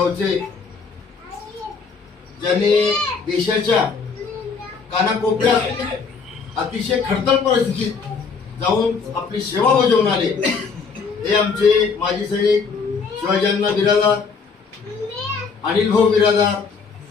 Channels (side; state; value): right; quieter; 5.2 dB